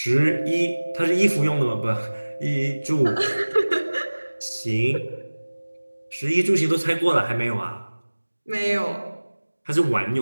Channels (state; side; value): inverted; both; correlation -1.00